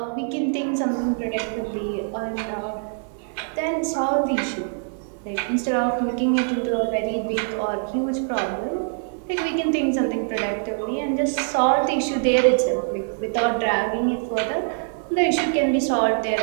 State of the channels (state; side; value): silent; left; 63 dB below the other